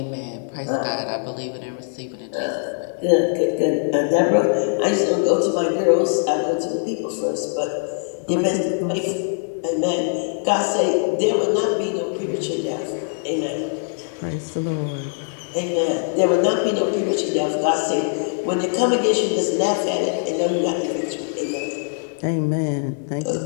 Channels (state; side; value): silent; right; digital silence